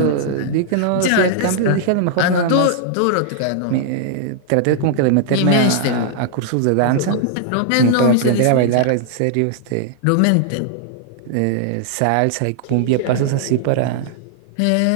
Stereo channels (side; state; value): both; different; correlation -0.01